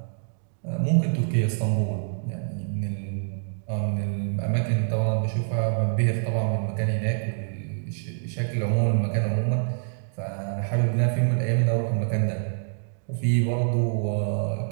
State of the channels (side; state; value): left; silent; digital silence